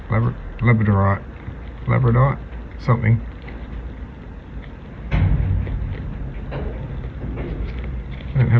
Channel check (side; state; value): both; identical; correlation 1.00